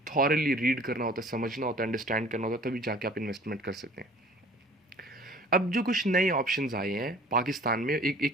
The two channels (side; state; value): both; normal; correlation 0.49